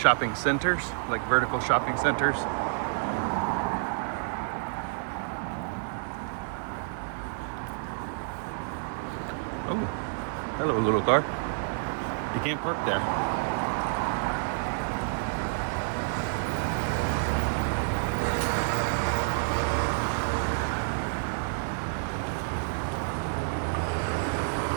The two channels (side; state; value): left; silent; digital silence